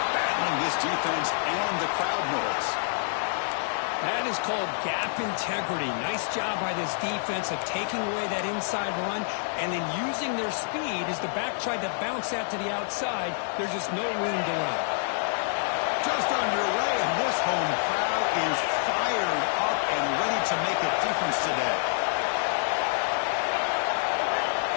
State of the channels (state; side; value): silent; right; digital silence